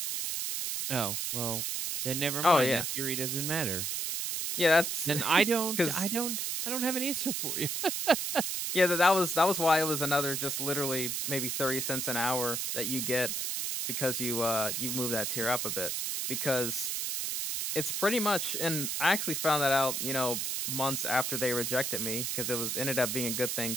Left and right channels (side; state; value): right; noise; hiss, 1 dB below the sound